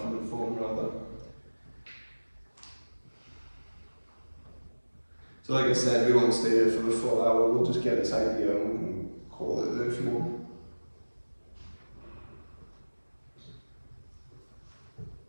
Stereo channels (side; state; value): both; inverted; correlation -1.00